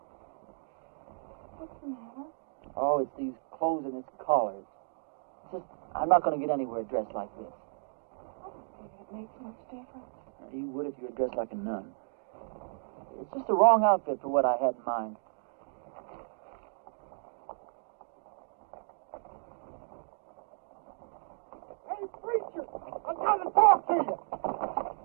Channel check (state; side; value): silent; left; digital silence